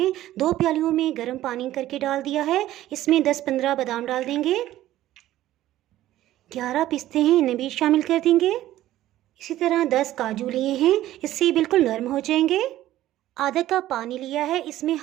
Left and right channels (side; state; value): left; quieter; 14.2 dB